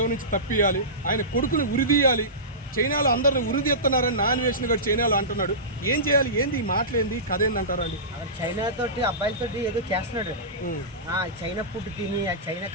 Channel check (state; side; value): normal; both; correlation -0.20